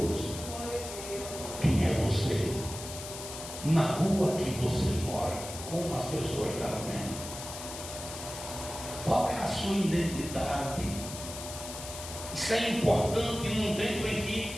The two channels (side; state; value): left; noise; hiss, 10 dB below the sound